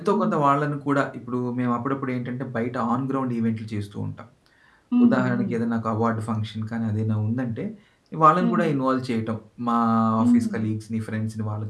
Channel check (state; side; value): identical; both; correlation 1.00